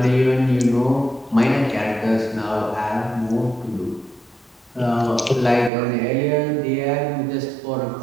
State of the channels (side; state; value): left; drops out; at 5.7 s